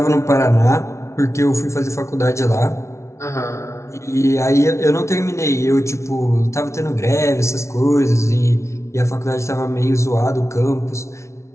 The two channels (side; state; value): right; late; 0.13 ms